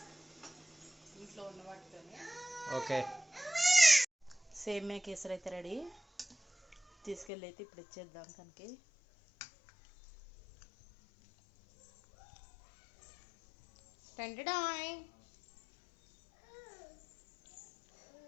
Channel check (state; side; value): drops out; right; at 7.3 s